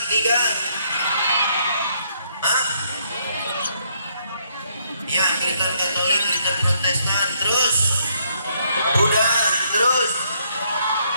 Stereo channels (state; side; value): inverted; both; correlation -0.71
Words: 3, ya, Kristen Katolik, Kristen Protestan, terus Buddha, terus